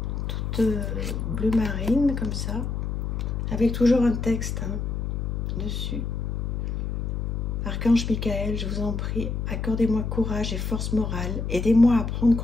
Toutes bleu marine, comme ça. Avec toujours un texte hein, dessus. Archange Michael, je vous en prie, accordez-moi courage et force morale. Aidez-moi à prendre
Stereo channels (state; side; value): noise; left; hum, 2 dB below the sound